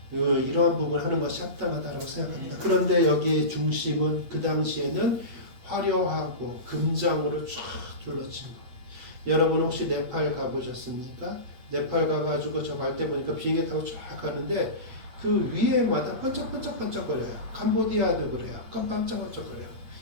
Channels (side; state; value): left; late; 8.5 ms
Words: 이러한 부분을 하는 것이 합당하다고 생각합니다. 그런데 여기에 중심은 그 당시에는 화려하고 금장으로 쫙 둘러친 것. 여러분 혹시 네팔 가보셨습니까? 네팔 가가지고 저 갈 때 보니까 비행기 타고 쫙 가는데 그 위에마다 반짝반짝거려요. 캄보디아도 그래요. 반짝반짝거려요.